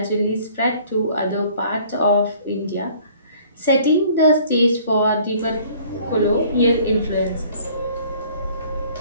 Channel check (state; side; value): inverted; both; correlation -0.54